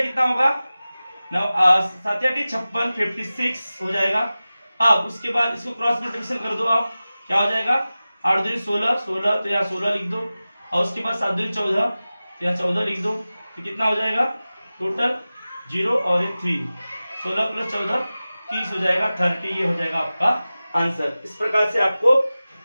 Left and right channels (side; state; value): both; inverted; correlation -0.96